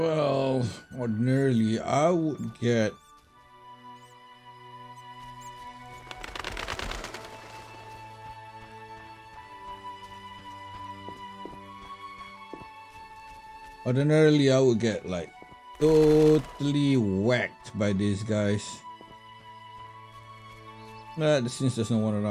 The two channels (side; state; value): both; identical; correlation 1.00